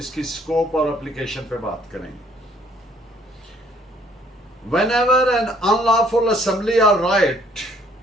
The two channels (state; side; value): normal; both; correlation 0.62